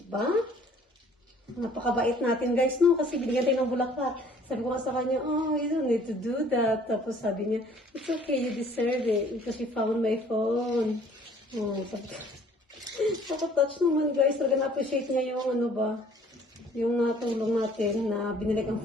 Napakabait natin guys, no? Kasi binigyan tayo ng bulaklak. Sabi ko nga sa kanya, oh, you don't need to do that. Tapos sabi niya, it's okay, you deserve it because you found my phone. Oh, sabi ko, nakatouch naman guys. Talaga na-appreciate niya yung yung natulong natin na binilik ang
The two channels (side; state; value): both; normal; correlation 0.56